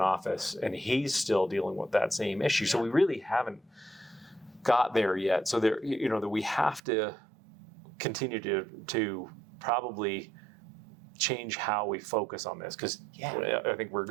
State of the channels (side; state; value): left; drops out; at 6.8 s